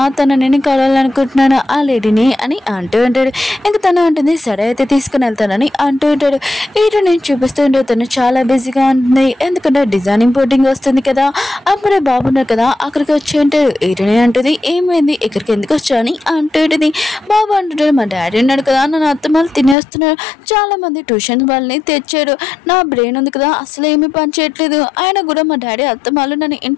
తను నేను కలవాలనుకుంటున్నాను ఆ లేడీని అని అంటూ ఉంటాడు. ఇంకా తను ఉంటుంది, సరే అయితే తీసుకుని వెళ్తానని అంటూ ఉంటాడు. హీరో నేను చూపిస్తూ ఉంటే తను చాలా బిజీగా ఉంటుంది, ఎందుకంటే డిజైనింగ్ బోర్డింగ్ వస్తుంది కదా. అప్పుడే బాబు ఉన్నారు కదా, అక్కడికి వచ్చి ఉంటాడు. హీరోని అంటుంది, ఏమైంది ఇక్కడికి ఎందుకు వచ్చావు అని అంటూ ఉంటుంది. బాబు అంటుంటాడు, మా డాడీ ఉన్నాడు కదా, నన్ను అత్తమాలు తినేస్తున్నాడు, చాలా మంది ట్యూషన్ వాళ్ళని తెచ్చారు, నా బ్రెయిన్ ఉంది కదా అసలు ఏమీ పని చేయట్లేదు, ఆయన కూడా మా డాడీ అత్తమాలు నన్ను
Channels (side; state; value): right; drops out; at 19.8 s